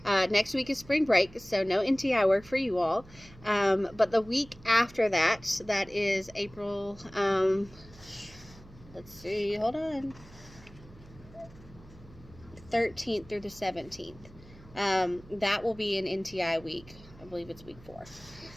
next week is spring break, so no NTI work for you all. But the week after that, that is April, let's see, hold on, 13th through the 17th. That will be an NTI week. I believe it's week 4.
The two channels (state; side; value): noise; right; hum, 22 dB below the sound